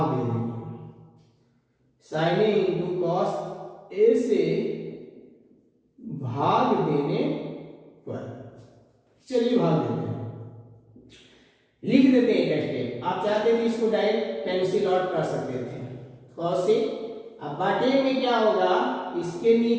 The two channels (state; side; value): identical; both; correlation 1.00